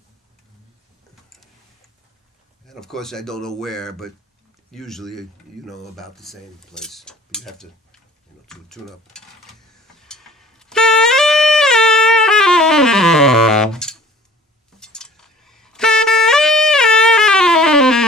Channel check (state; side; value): normal; both; correlation 0.48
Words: And of course I don't know where, but usually about the same place. But you have to tune up.